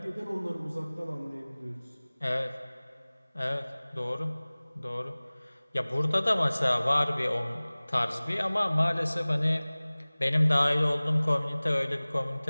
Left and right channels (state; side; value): inverted; both; correlation -1.00